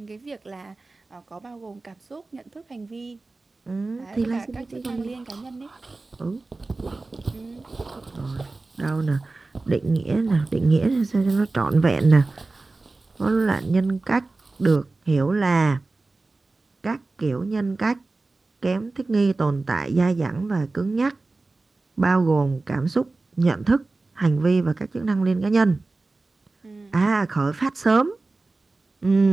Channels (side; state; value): left; quieter; 3.4 dB